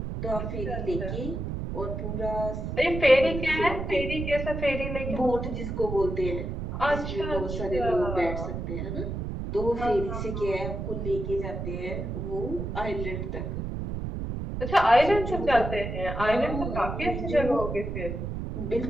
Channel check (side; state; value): right; noise; rumble, 4 dB below the sound